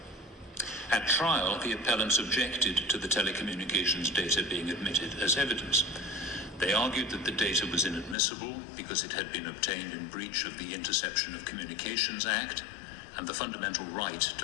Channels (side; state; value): right; drops out; at 8.2 s